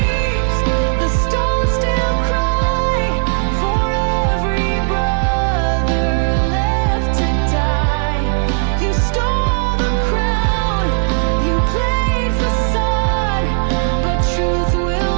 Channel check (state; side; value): silent; left; 61 dB below the other